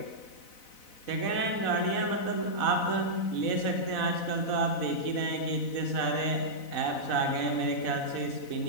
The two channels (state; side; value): late; right; 4.0 ms